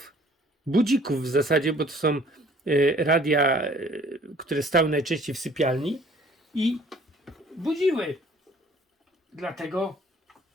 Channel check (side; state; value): both; normal; correlation 0.55